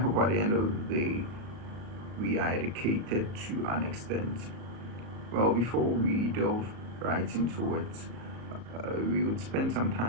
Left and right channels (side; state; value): left; late; 37 ms